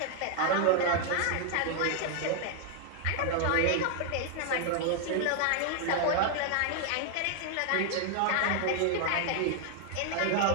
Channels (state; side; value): different; both; correlation 0.00